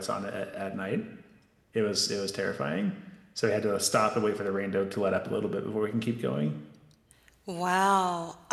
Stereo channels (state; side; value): identical; both; correlation 1.00